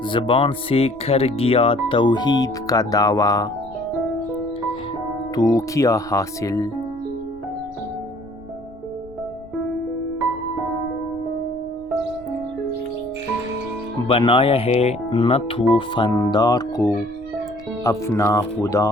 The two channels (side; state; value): left; noise; rumble, 24 dB below the sound